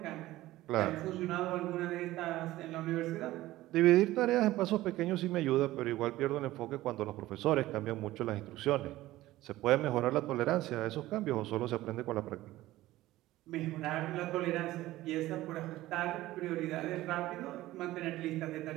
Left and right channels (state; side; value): quieter; left; 16.5 dB